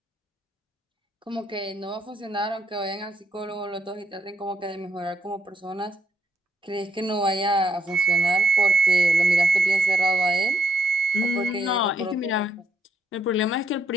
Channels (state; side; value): normal; both; correlation 0.73